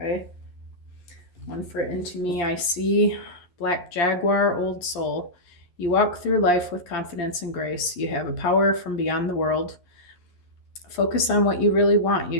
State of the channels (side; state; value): right; late; 11 ms